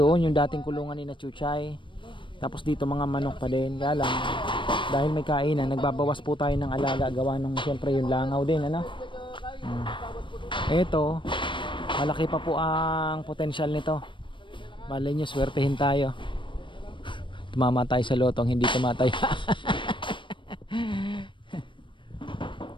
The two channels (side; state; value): right; late; 0.24 ms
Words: yung dating kulungan ni na Chuchay. Tapos dito mga manok pa din. Kaya lang dahil may kainan, nagbabawas po tayo ng alaga, gawa nung siyempre yung langaw din, ano. Ito malaki pa po ang potensyal nito. Malay nyo, swertehin tayo. Tumama tayo sa lotong, hindi tumatay.